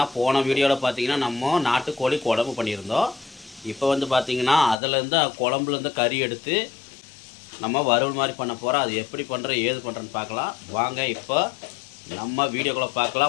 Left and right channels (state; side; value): drops out; right; at 4.8 s